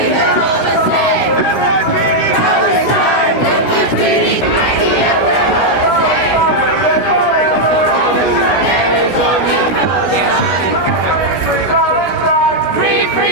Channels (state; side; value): late; right; 16 ms